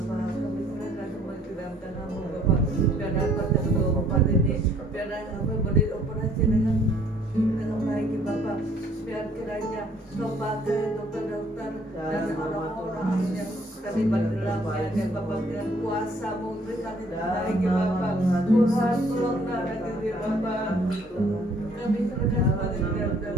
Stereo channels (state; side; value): normal; both; correlation 0.61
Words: kami serahkan semua ke dalam tangan-Mu Bapak. Biar dapat tempat ini, biar kami boleh operasi dengan baik ya Bapak. Biar kiranya Kau pakai dokter-dokter dan orang-orang yang terlibat dalamnya dan Bapak dengan kuasa-Mu berikan yang terbaik ya Bapak. Tuhan tolong darahkan dia Bapak. Kami serahkan semuanya ke dalam